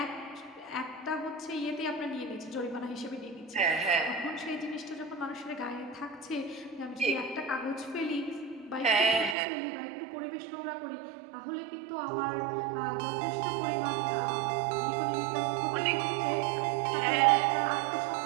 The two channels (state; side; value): drops out; left; at 9.3 s